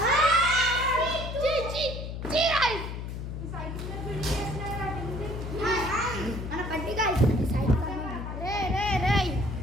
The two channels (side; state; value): left; noise; hum, 6 dB below the sound